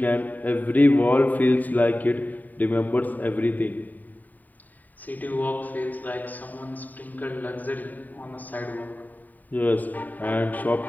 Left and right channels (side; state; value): right; late; 0.084 ms